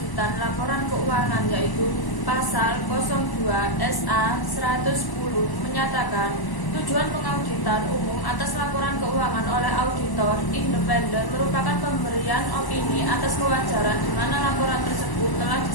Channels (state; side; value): late; right; 1.0 ms